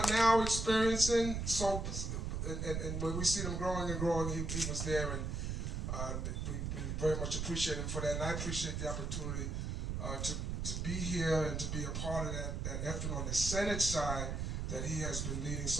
now experiencing, and when we see them growing and growing, he was there, and we very much appreciate him for that, and I appreciate the opportunity to be here and to be a part of that effort on the Senate side that he has been leading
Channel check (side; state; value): right; noise; rumble, 2 dB below the sound